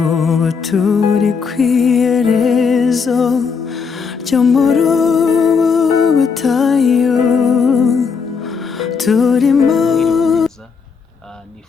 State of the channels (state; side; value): quieter; right; 5.6 dB